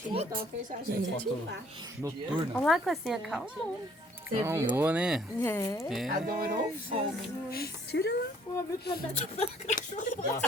noturna. Olha lá, Cocinha, calma. Calmou, né? É. Adorou o fogo. Tira lá.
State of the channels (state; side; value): normal; both; correlation 0.61